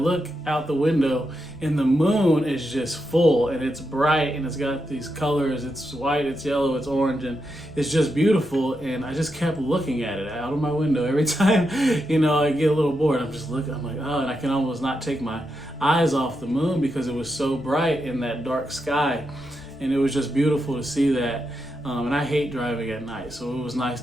out the window and the moon is just full and it's bright and it's got these colors. It's white, it's yellow, it's orange, and it's just beautiful. And I just kept looking at it out of my window every time, I get a little bored. I'm just looking, I'm like, oh, and I can almost not take my eyes off the moon because it was so bright in that dark sky. And it was just beautiful to see that. And I hate driving at night, so it was nice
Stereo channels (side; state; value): both; normal; correlation 0.85